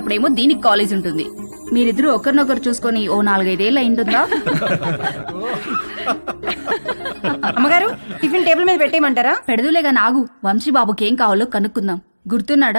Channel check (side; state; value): both; inverted; correlation -1.00